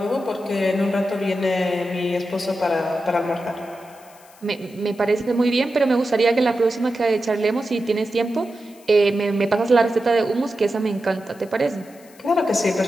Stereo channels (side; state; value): left; noise; hiss, 26 dB below the sound